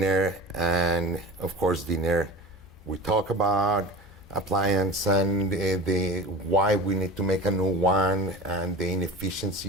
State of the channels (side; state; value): left; noise; hum, 24 dB below the sound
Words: and of course, dinner, we talk about appliance and the why we need to make a new one and the